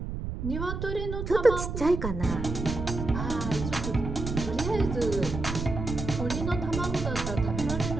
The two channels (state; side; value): noise; right; rumble, 5 dB below the sound